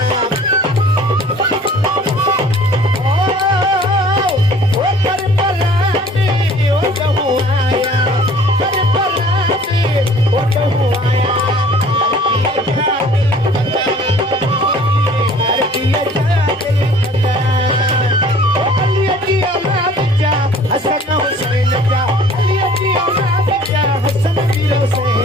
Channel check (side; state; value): both; normal; correlation 0.52